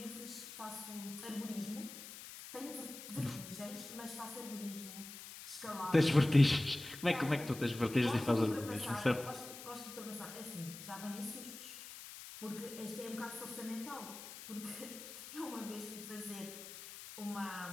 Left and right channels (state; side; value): noise; left; hiss, 12 dB below the sound